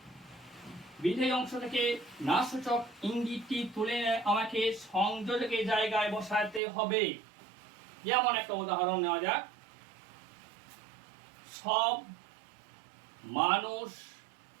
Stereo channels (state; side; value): drops out; left; at 6.6 s